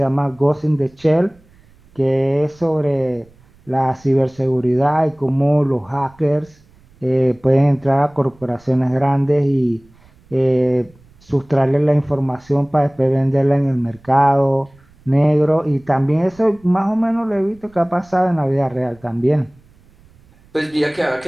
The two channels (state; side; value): noise; right; rumble, 29 dB below the sound